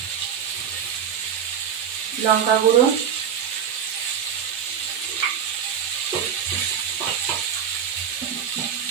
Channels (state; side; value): quieter; left; 8.1 dB